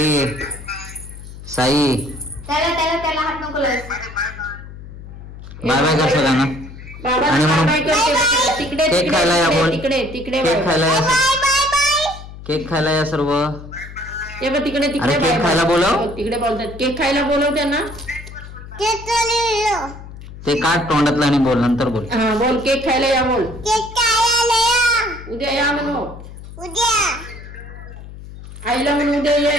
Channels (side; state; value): left; noise; hum, 14 dB below the sound